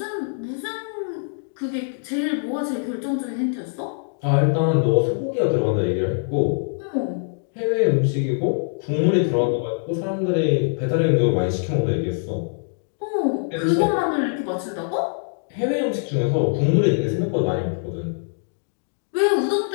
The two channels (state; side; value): silent; right; digital silence